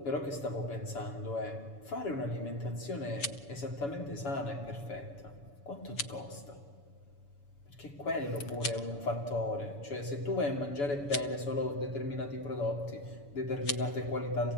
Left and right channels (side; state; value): right; late; 7.0 ms